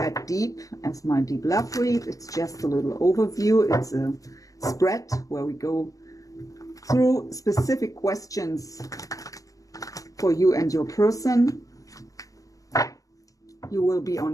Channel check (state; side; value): late; right; 0.17 ms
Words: deep as my deep love read. It's just a little overview. It's a spread where we go through specific questions for you and your person. You will be